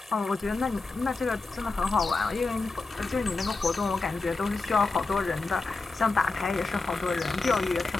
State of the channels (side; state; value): right; quieter; 3.7 dB